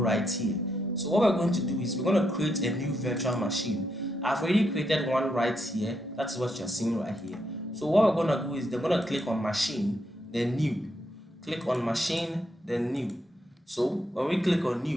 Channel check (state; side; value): normal; both; correlation 0.79